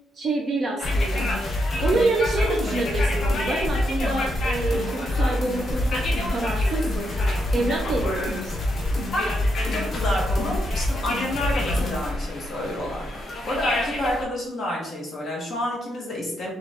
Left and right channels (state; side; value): normal; both; correlation 0.81